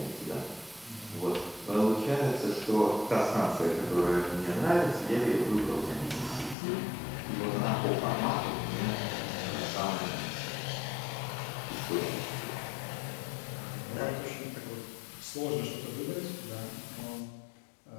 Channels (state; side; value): drops out; right; at 6.6 s